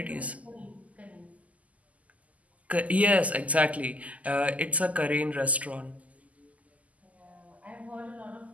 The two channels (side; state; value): left; late; 0.072 ms